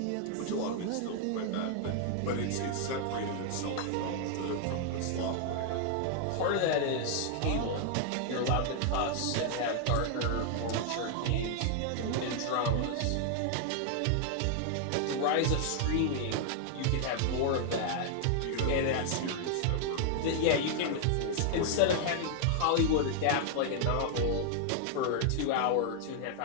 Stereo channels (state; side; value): different; both; correlation 0.00